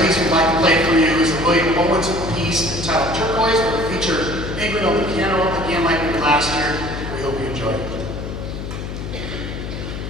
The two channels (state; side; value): noise; left; hum, 7 dB below the sound